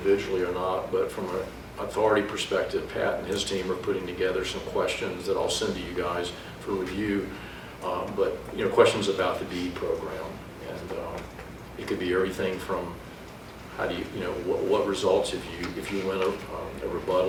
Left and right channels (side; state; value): both; identical; correlation 1.00